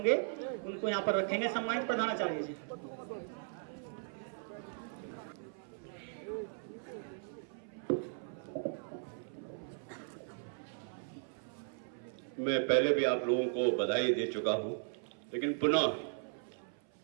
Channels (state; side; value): silent; left; 53 dB below the other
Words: उनको यहाँ पर रखेंगे। सम्मानित प्रधानाचार्य जी। मैं पहले भी आप लोगों को बधाई दे चुका हूं, लेकिन पुनः